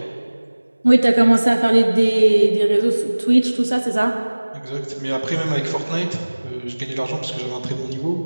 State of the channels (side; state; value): both; inverted; correlation -1.00